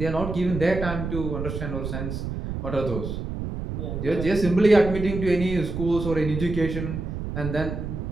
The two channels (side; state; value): right; noise; rumble, 5 dB below the sound